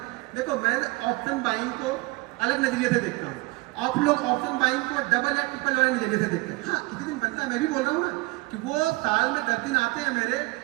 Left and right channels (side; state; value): left; quieter; 23.0 dB